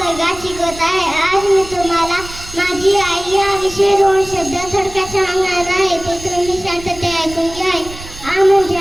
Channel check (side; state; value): right; noise; rumble, 15 dB below the sound